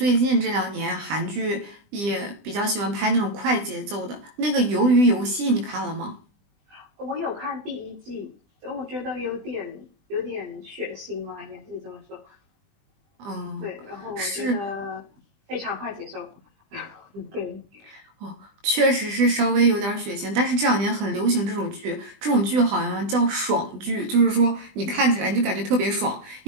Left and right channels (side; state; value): left; late; 20 ms